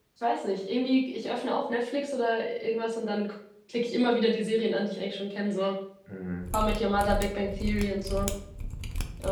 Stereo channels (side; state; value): both; identical; correlation 1.00